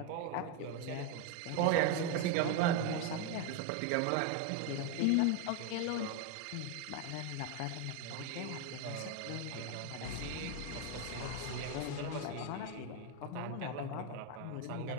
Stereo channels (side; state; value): both; different; correlation 0.02